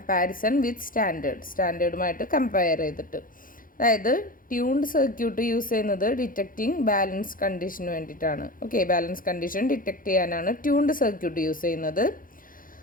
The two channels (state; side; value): late; right; 0.40 ms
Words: വിത്ത് സ്റ്റാൻഡേർഡുമായിട്ട് കമ്പയർ ചെയ്തിട്ട്. അതായത് ട്യൂൺഡ് സർക്യൂട്ട് യൂസ് ചെയ്യുന്നത് ഡിറ്റക്റ്റിംഗ് ബാലൻസ് കണ്ടീഷന് വേണ്ടിയിട്ടാണ്. ഓക്കെ, ബാലൻസ് കണ്ടീഷൻ ഡിറ്റക്റ്റ് ചെയ്യാനാണ് ട്യൂൺഡ് സർക്യൂട്ട് യൂസ് ചെയ്യുന്നത്.